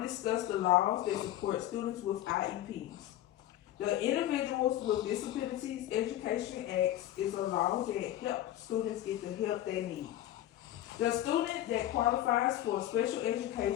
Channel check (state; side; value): quieter; right; 13.3 dB